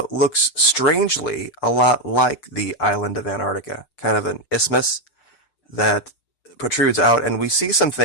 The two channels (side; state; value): right; late; 6.7 ms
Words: looks strangely a lot like the island of Antarctica, kind of an isthmus that protrudes out, and we see some